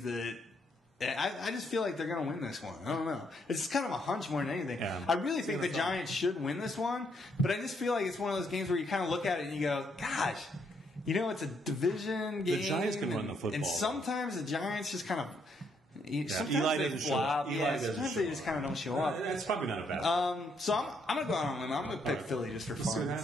that I just feel like they're going to win this one. I don't know. It's just kind of a hunch more than anything. Yeah. I really think the Giants should win this one, but I just feel like it's one of those games where you kind of look at it and you go, gosh. You know, it's a division game. The Giants can run the football. And sometimes the Giants just kind of... Sometimes Eli they flop. Sometimes they just kind of don't show up. That's probably not a bad So I'm going to go out on a limb. I'm going to pick Philly just for fun.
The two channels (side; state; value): both; normal; correlation 0.73